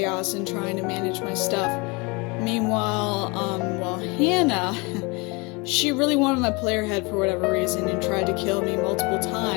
and trying to manage my stuff. Meanwhile, Hannah, she really wanted my player head for whatever reason and tried to kill me multiple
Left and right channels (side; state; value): right; quieter; 28.1 dB